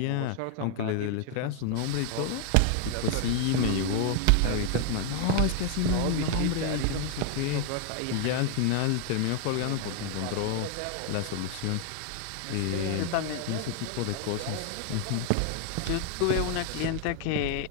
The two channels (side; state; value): both; different; correlation 0.00